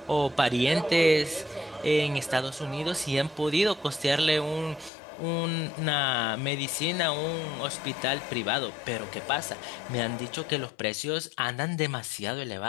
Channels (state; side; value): drops out; right; at 4.9 s